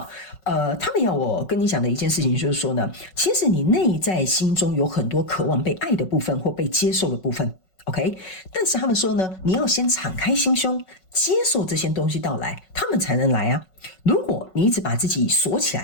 们要我跟你讲的一件事情就是说呢，其实你内在心中有很多渴望被爱的部分或被接受的部分。OK， 但是他们说呢，你要先敞开心胸，接受这些东西到来，他们才能来啊。如果你一直把自己锁起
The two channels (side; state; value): right; late; 5.4 ms